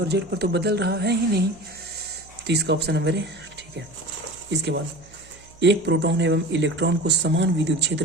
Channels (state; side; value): noise; right; hum, 25 dB below the sound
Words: z पर तो बदल रहा है ही नहीं। तो इसका ऑप्शन नंबर है ठीक है। इसके बाद एक प्रोटॉन एवं इलेक्ट्रॉन को समान विद्युत